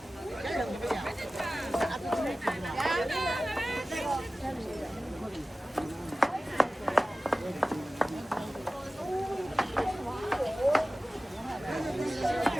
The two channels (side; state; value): both; normal; correlation 0.96